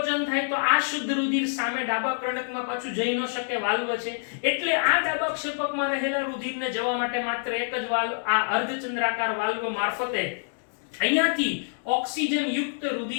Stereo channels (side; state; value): right; silent; digital silence